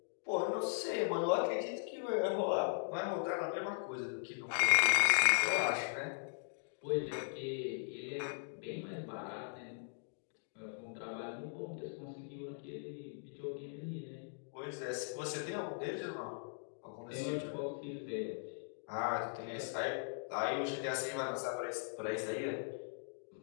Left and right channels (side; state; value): right; silent; digital silence